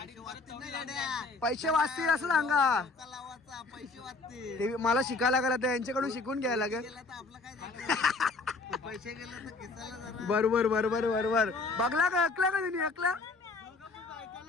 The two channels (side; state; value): right; quieter; 3.7 dB